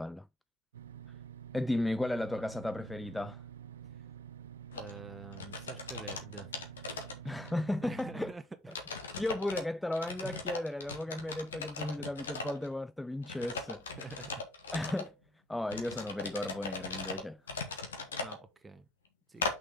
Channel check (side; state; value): both; normal; correlation 0.65